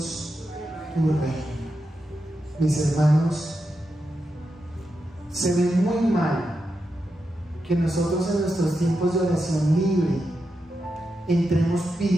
tu reino. Mis hermanos, se ve muy mal que nosotros en nuestros tiempos de oración libre entremos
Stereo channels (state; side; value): normal; both; correlation 0.87